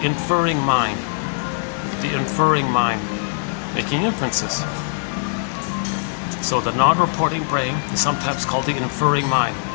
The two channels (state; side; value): silent; right; digital silence